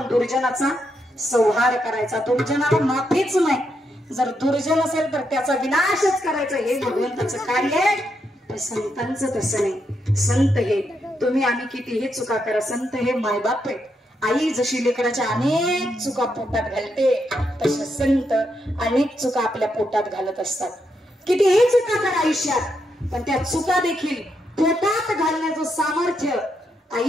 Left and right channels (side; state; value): both; normal; correlation 0.81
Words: दुर्जनाचा संहार करायचा. दुर्जनाला माफीच नाही. जर दुर्जन असेल तर त्याचा विनाशच करायचा, हे भगवंताचं कार्य आहे. पण संतांचं तसं नाही. संत हे तुम्ही आम्ही कितीही चुका करा, संत हे मायबाप आहेत. आई जशी लेकराच्या अनेक चुका पोटात घालते, तसे संत अनेक चुका आपल्या पोटात घालत असतात. कितीही चुका करा आयुष्यात, पण त्या चुका देखील पोटात घालण्याचं सामर्थ्य